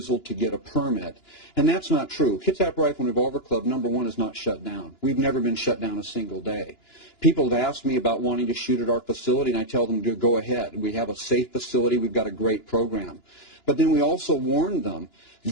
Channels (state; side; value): late; right; 2.9 ms